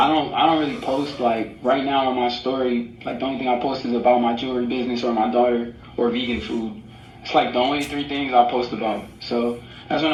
don't really post. Like right now on my story, like the only thing I post is about my jewelry business or my daughter or vegan food. It's like the only 3 things I post about. So that's what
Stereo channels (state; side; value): identical; both; correlation 1.00